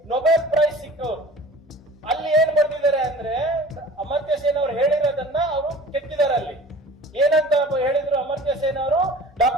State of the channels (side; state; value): both; normal; correlation 0.43